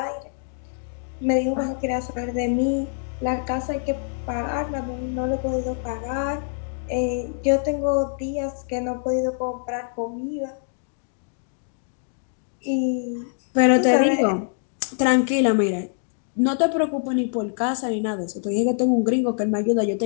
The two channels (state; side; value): silent; right; digital silence